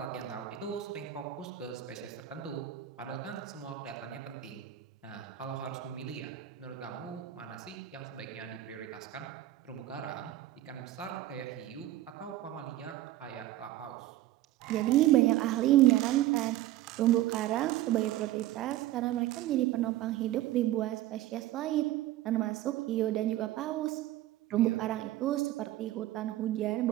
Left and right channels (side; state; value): left; quieter; 14.2 dB